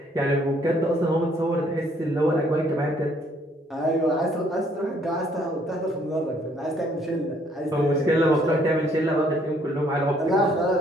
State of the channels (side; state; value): both; normal; correlation 0.65